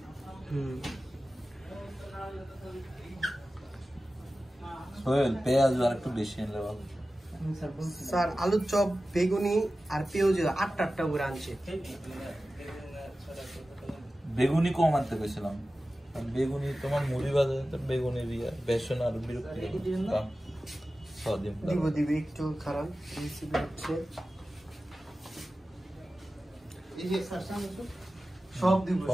সোহেল পেঁয়াজ আর একটু বেশি এনে ভালো স্যার আলুর চপ বেগুনি আর পেঁয়াজ 8টা করে আনছে বেগুনি কম আনতে পেয়েছিলাম বেগুনি তোমার মুড়ি বাজারে বেগুনি দিয়া বেসন আর বিরক্তি দিব একটু খারাপ রেসিপি হচ্ছে সব দিব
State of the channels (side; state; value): both; normal; correlation 0.95